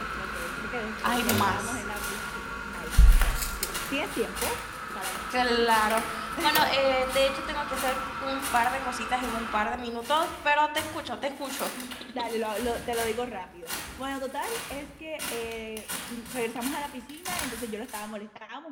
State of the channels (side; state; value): both; identical; correlation 1.00